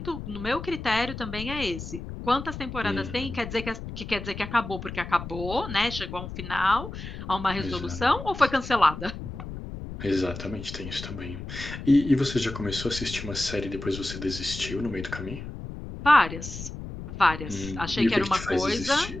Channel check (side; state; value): left; noise; rumble, 9 dB below the sound